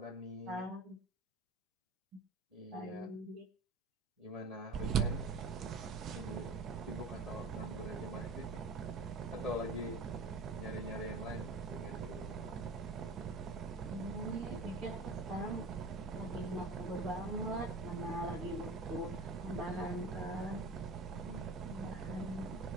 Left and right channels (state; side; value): quieter; left; 3.2 dB